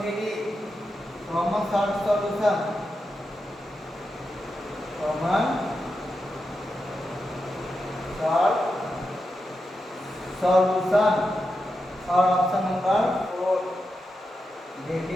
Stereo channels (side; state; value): both; normal; correlation 0.88